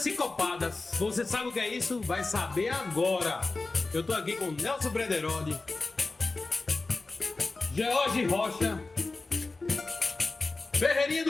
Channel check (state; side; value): quieter; right; 3.5 dB